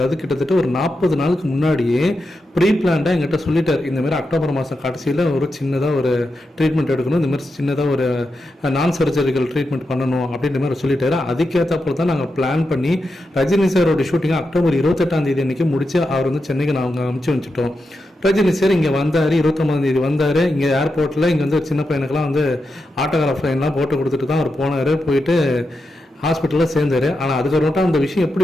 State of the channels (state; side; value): normal; both; correlation 0.87